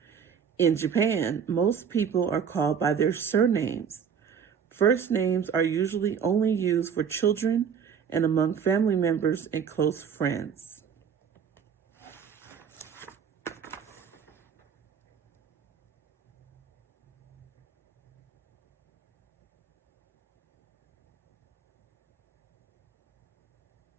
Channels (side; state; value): left; quieter; 7.2 dB